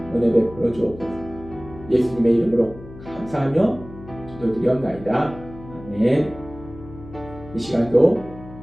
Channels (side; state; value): left; noise; hum, 16 dB below the sound